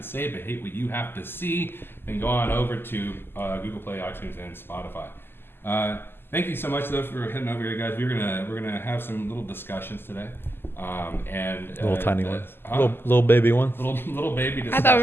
say but hate what you have to see, then go on over to Google Play, iTunes, and Spotify. Thank you so much though for heading over here, guys. We're gonna have some little discussions today. Little tiny ones. Huh? Little baby ones. Little baby discussions. I thought we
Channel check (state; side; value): late; right; 0.11 ms